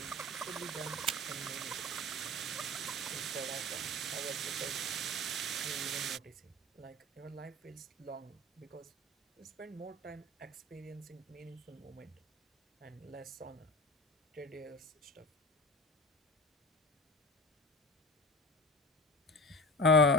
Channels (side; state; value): both; normal; correlation 0.33